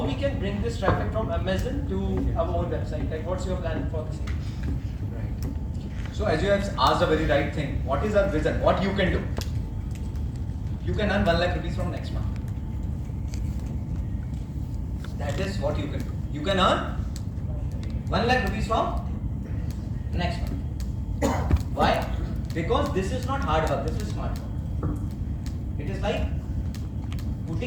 can bring this traffic from Amazon to our own website? Like what's your plan for this? Right. So as you have asked a very right thing, what is our vision? What you can do? You can earn 1 lakh rupees from next month. That is what you can do. You can earn 1 lakh rupees from next month. Why? Because this is not hard work, this is smart work. It is like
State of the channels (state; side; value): identical; both; correlation 1.00